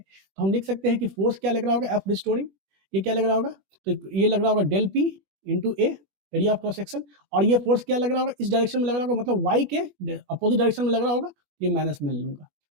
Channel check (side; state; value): left; late; 20 ms